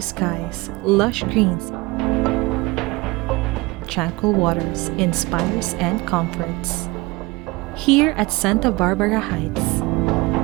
skies, lush greens, tranquil waters inspires and comforts. Here at Sta Barbara Heights,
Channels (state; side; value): quieter; left; 23.0 dB